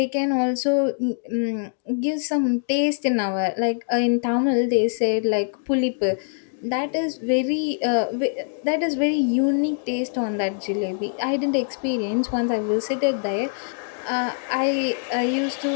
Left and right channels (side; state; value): right; silent; digital silence